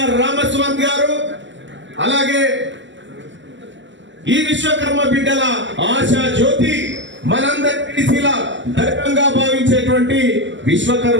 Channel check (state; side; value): late; left; 0.54 ms